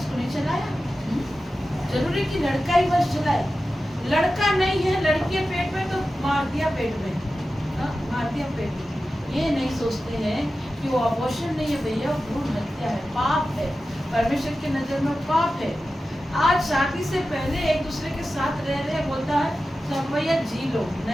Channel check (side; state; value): both; normal; correlation 0.93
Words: को नहीं चलाया? जरूरी कि लड़का ही वंश चलाए? लड़का नहीं है, लड़की है पेट में तो मार दिया पेट में, हाँ, मार दिया पेट में। ये नहीं सोचते हैं कि वो अबॉर्शन नहीं है भैया, भ्रूण हत्या है, पाप है, परमेश्वर की नजर में पाप है। आज शादी से पहले एक दूसरे के साथ रह रहे बोलता है सब भैया जी लो,